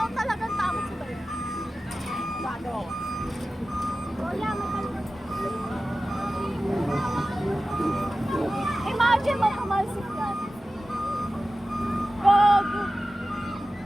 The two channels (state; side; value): normal; both; correlation 0.95